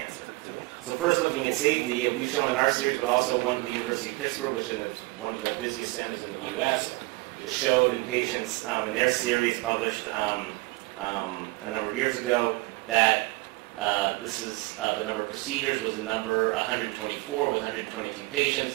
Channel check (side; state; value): left; quieter; 23.0 dB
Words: So first, looking at safety, we've shown in our series, but also one at the University of Pittsburgh, which is one of the busiest centers in the U.S., showed in patients in their series published a number of years ago that this is the number of procedures was a number 124 with 122